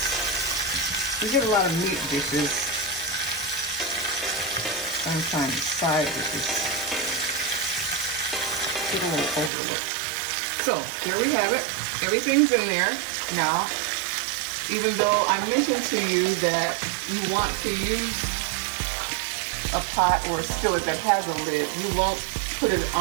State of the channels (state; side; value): drops out; left; at 9.5 s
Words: We get a lot of meat dishes. Sometimes side dishes get a little overlooked. So here we have it. Everything's in there. Now, even though I mentioned to you that you want to use a pot or a skillet that has a lid, you won't put it